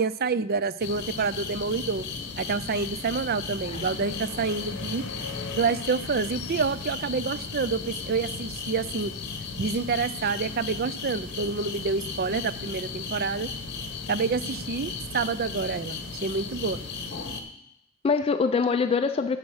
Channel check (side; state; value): both; normal; correlation 0.02